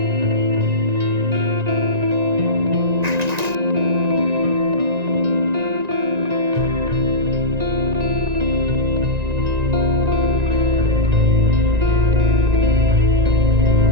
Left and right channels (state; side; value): late; left; 1.9 ms